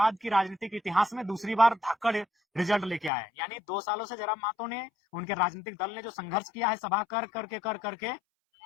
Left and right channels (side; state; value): right; drops out; at 3.1 s